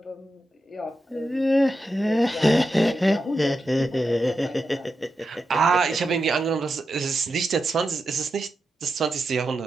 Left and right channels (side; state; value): both; normal; correlation 0.88